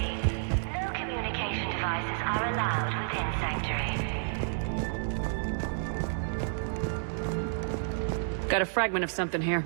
no communication devices are allowed within Sanctuary. Got a fragment of something here.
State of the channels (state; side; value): silent; left; digital silence